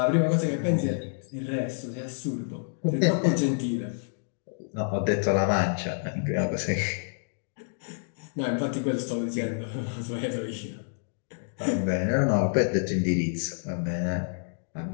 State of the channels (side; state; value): right; silent; digital silence